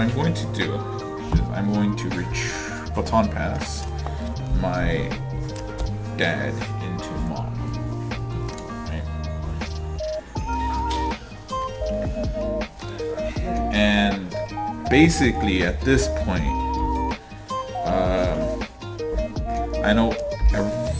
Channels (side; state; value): both; identical; correlation 1.00